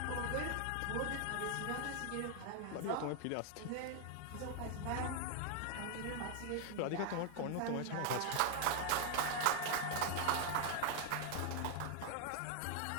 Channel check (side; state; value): both; different; correlation 0.00